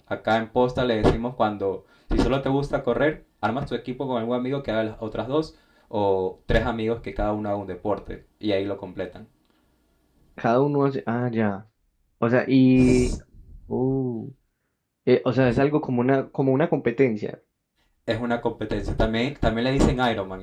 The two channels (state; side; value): identical; both; correlation 1.00